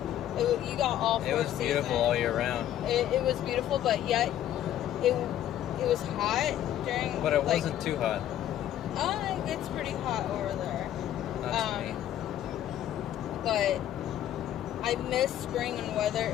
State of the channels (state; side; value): quieter; right; 11.6 dB